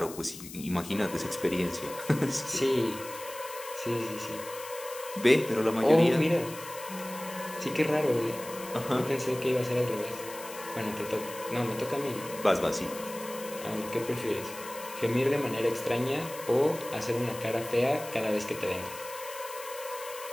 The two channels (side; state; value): left; noise; hiss, 13 dB below the sound